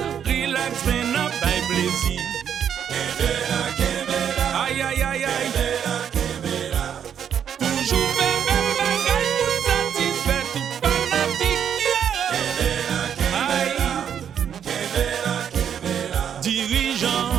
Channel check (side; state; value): left; quieter; 8.6 dB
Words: relax, mais n'a pas plaisir. Aïe, aïe, aïe, aïe. Toujours faire belle bagaille pour satisfaire tout fanatique. Aïe, dirigeant,